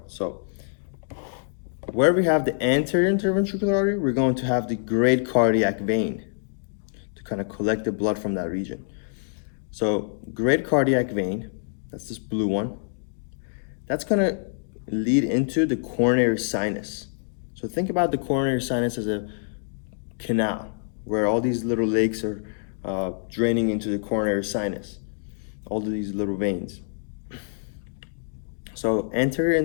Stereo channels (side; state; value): right; silent; digital silence